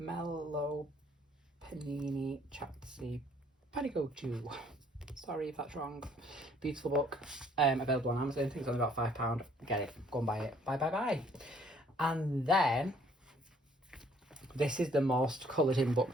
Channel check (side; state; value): both; normal; correlation 0.62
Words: Panini Chatsy Panigochu. Sorry if that's wrong. Beautiful book. Available on Amazon. I think it's only about £5. Get it. Go and buy it. Bye. And then this is the most coloured in